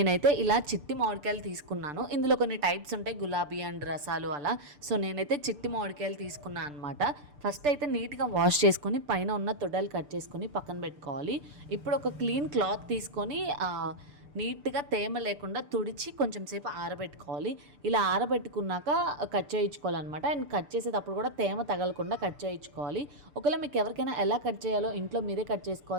ఇలా చిట్టి మామిడికాయలు తీసుకున్నాను. ఇందులో కొన్ని టైప్స్ ఉంటాయి, గులాబీ అండ్ రసాలు అలా. సో నేనైతే చిట్టి మామిడికాయలు తీసుకున్నాను అనమాట. ఫస్ట్ అయితే నీట్గా వాష్ చేసుకొని పైన ఉన్న తొడలు కట్ చేసుకొని పక్కన పెట్టుకోవాలి. ఇప్పుడు ఒక క్లీన్ క్లాత్ తీసుకొని నీట్గా తేమ లేకుండా తుడిచి కొంచెం సేపు ఆరబెట్టుకోవాలి. ఇలా ఆరబెట్టుకున్నాక కట్ చేయించుకోవాలన్నమాట. అండ్ కట్ చేసేటప్పుడు కూడా తేమ తగలకుండా కట్ చేయించుకోవాలి. ఒకవేళ మీకు ఎవరికైనా ఎలా కట్ చేయాలో ఇంట్లో మీరే కట్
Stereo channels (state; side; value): late; left; 6.8 ms